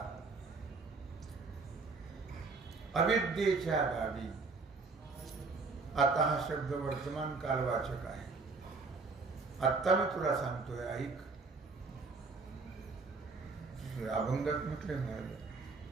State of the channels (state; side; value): quieter; left; 4.2 dB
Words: अविद्येच्या गावी, आता हा शब्द वर्तमान कालवाचक आहे. आत्ता मी तुला सांगतोय, ऐक. अभंगात म्हटले महाराज,